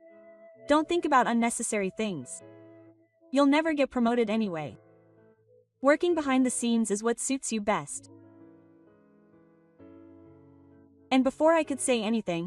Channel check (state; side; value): identical; both; correlation 1.00